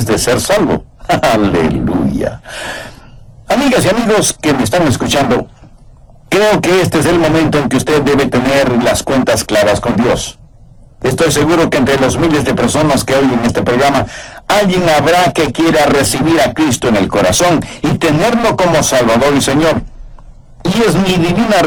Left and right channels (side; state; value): both; identical; correlation 1.00